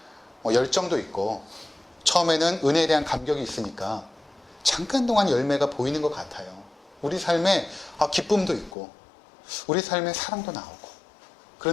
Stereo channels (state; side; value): drops out; right; at 8.8 s